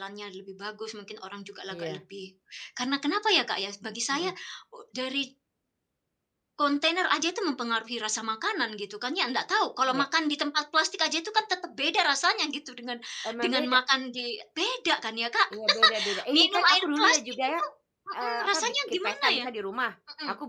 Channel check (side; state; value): both; identical; correlation 1.00